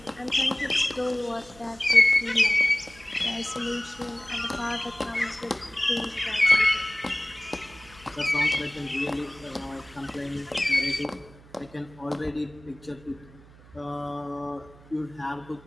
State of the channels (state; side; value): noise; right; hum, 23 dB below the sound